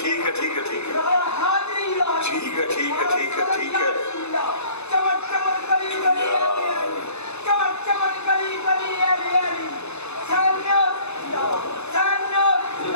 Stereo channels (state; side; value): late; right; 0.81 ms